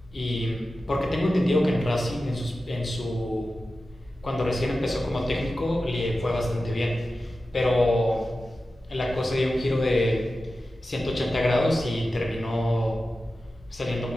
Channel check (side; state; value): both; normal; correlation 0.93